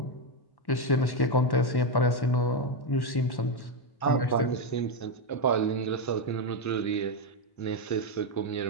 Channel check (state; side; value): late; right; 1.1 ms